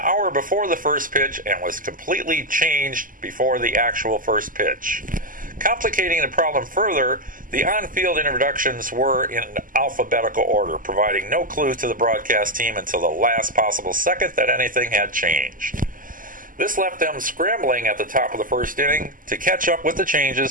before the first pitch and was completely changed before the actual first pitch. Complicating the problem further, the on-field introductions were in alphabetical order, providing no clue to the broadcast team until the last possible second that anything had changed. This left them scrambling at the top of the first inning to catch up with the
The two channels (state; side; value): late; left; 0.40 ms